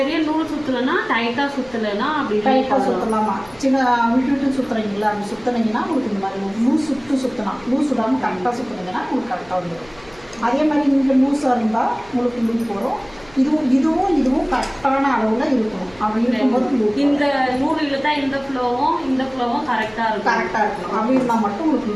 நூல் சுற்றலைன்னா டைட்டாக சுற்றலைன்னா அப்படி டைட்டாக சுற்றலாமா, சின்ன விட்டு சுற்றுறீங்களா, அப்படி சுற்றுனீங்கன்னா உங்களுக்கு இந்த மாதிரி லூஸ் சுற்றலாம். லூஸ் விடாமல் கரெக்டாக சுற்றுனீங்கன்னா உங்களுக்கு கரெக்டாக வந்துடும். அதே மாதிரி இங்கே லூஸாக இருந்தால் உங்களுக்கு லூப் வரும். இதுவும் கரெக்டான அளவில் இருக்கணும். அப்படி இருக்கும்போது இந்த நூல் இழுத்தா இந்த ஃப்ளோவும் கரெக்டாக இருக்கணும். அப்படி இருந்தால் மட்டும் உங்களுக்கு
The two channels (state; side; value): noise; left; hum, 25 dB below the sound